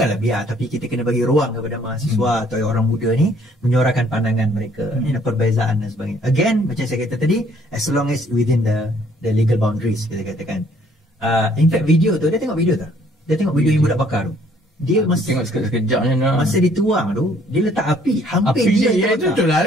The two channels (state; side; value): normal; both; correlation 0.62